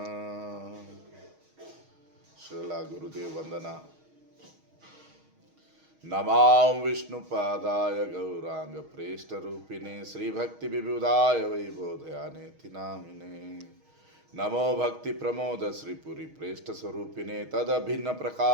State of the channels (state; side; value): late; left; 6.4 ms